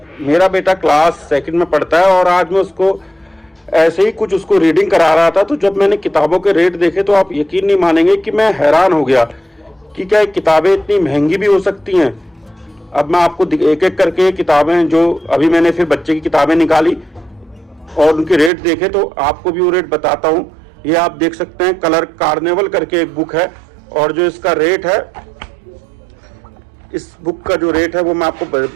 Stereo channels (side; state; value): left; drops out; at 18.5 s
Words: मेरा बेटा क्लास सेकंड में पढ़ता है और आज मैं उसको ऐसे ही कुछ उसको रीडिंग करा रहा था, तो जब मैंने किताबों के रेट देखे तो आप यकीन नहीं मानेंगे कि मैं हैरान हो गया कि क्या किताबें इतनी महंगी भी हो सकती हैं। अब मैं आपको एक एक करके किताबें, जो अभी मैंने फिर बच्चे की किताबें निकाली और उनके रेट देखे, तो आपको भी वो रेट बताता हूँ। ये आप देख सकते हैं, कलर कार्निवल करके एक बुक है, और जो इसका रेट है, इस बुक का जो रेट है वो मैं आपको